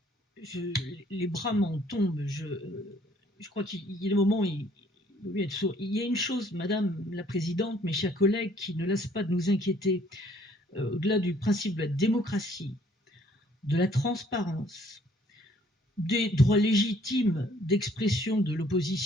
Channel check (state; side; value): normal; both; correlation 0.61